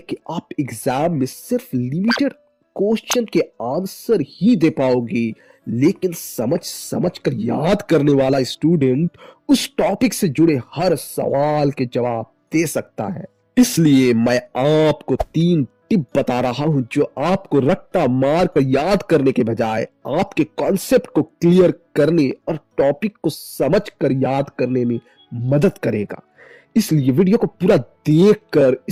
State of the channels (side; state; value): both; identical; correlation 1.00